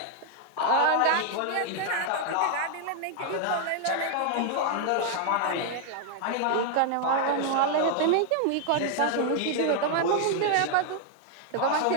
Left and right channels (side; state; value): both; different; correlation 0.00